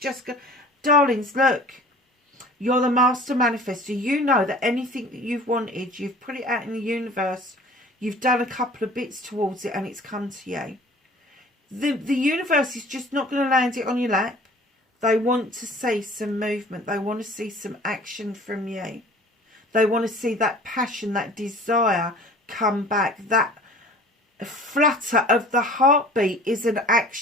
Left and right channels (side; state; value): both; normal; correlation 0.46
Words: Darlings, look. You're the master manifestor. You know that anything that you've wanted, you've put it out in the universe. You've done a couple of bits towards it, and it's come to you. The universe is just not going to land it on your lap. They want to see some movement. They want to see some action from you. They want to see that passion, that desire come back. That flutter of the heartbeat is an